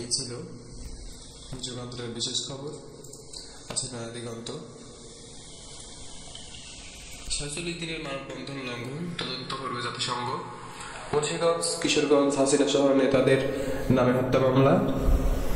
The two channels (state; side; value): identical; both; correlation 1.00